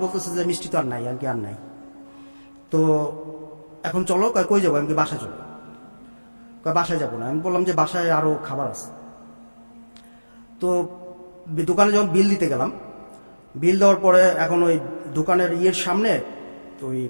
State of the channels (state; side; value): inverted; both; correlation -1.00